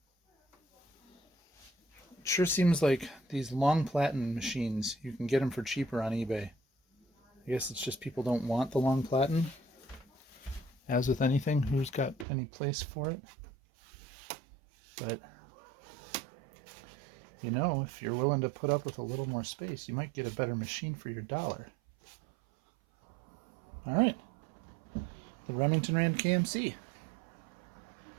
it sure seems like these long platen machines, you can get them for cheaper on eBay. I guess it's just people don't want the long platen. As with anything, who's got any place for it? But, you know, if you're willing to put up with a little more space, you might get a better machine for your dollar. All right. The Remington Rand KMC.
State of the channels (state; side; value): drops out; left; at 12.2 s